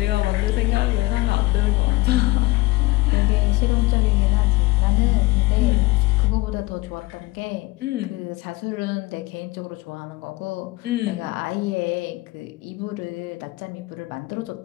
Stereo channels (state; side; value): quieter; right; 20.6 dB